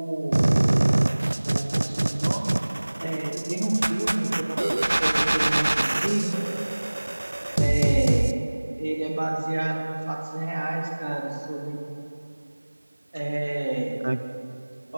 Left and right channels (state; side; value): inverted; both; correlation -1.00